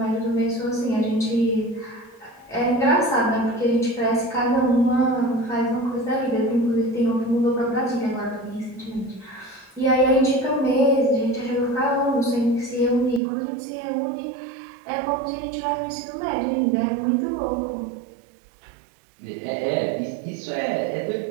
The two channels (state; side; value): drops out; left; at 13.2 s